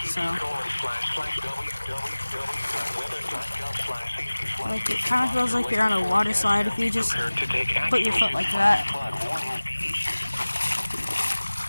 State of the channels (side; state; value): both; inverted; correlation -1.00